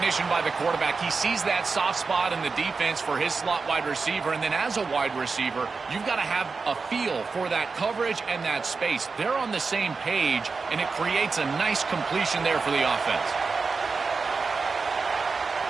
by the quarterback. He sees that soft spot in the defense for his slot wide receiver, and then as a wide receiver, you've got to have a feel for that coverage and that space. They're on the same page, and it creates a nice completion there for the offense.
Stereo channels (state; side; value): quieter; left; 4.6 dB